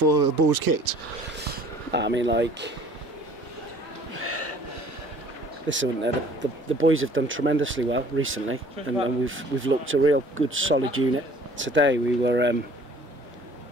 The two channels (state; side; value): normal; both; correlation 0.53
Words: the ball was kicked? I mean, listen, the boys have done tremendously well recently, and we've looked a real good, solid unit. Today we